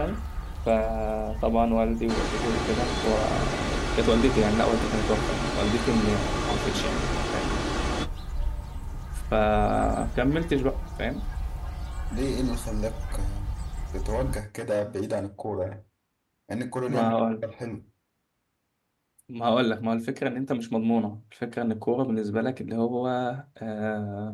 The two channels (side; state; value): both; identical; correlation 1.00